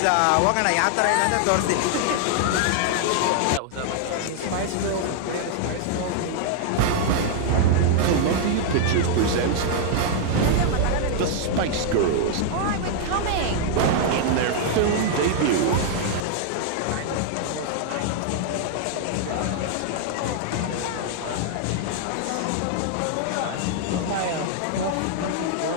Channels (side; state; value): both; different; correlation 0.00